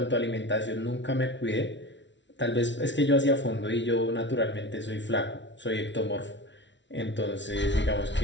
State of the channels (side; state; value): right; late; 0.53 ms